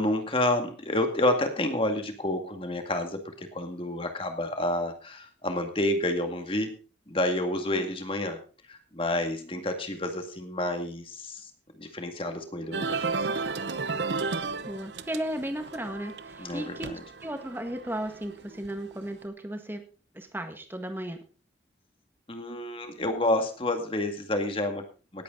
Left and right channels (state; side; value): normal; both; correlation 0.27